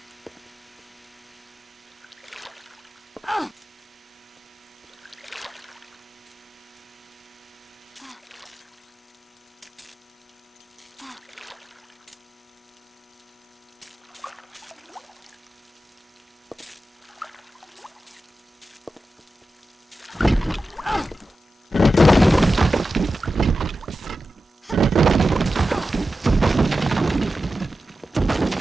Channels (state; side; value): normal; both; correlation 0.93